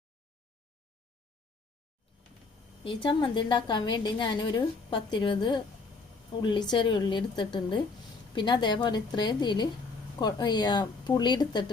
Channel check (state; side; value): quieter; right; 4.0 dB